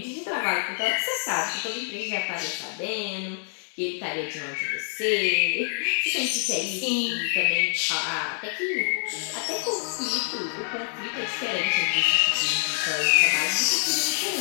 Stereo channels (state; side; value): silent; right; 60 dB below the other